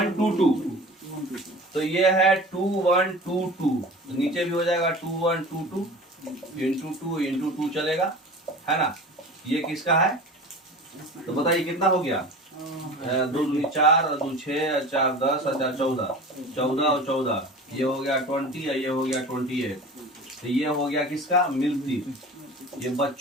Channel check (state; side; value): normal; both; correlation 0.37